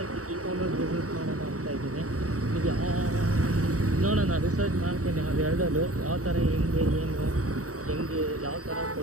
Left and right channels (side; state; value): left; late; 0.66 ms